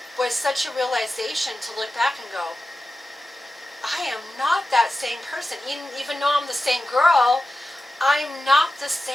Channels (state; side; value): normal; both; correlation 0.93